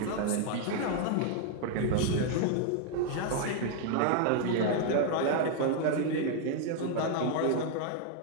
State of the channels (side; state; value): both; different; correlation 0.00